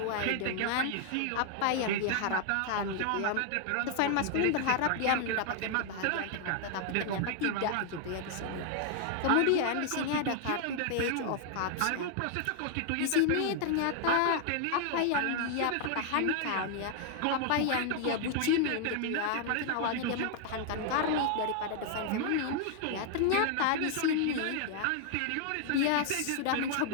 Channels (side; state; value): both; different; correlation 0.00